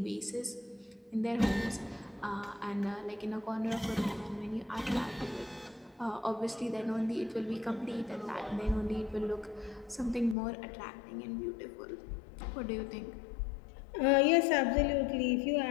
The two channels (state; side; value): drops out; right; at 10.4 s